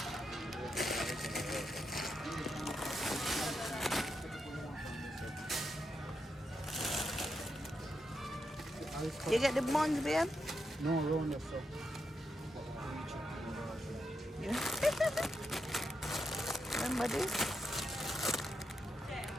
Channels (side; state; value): both; normal; correlation 0.84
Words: You get the buns, babe? No, round yourself. Yeah. Remember this?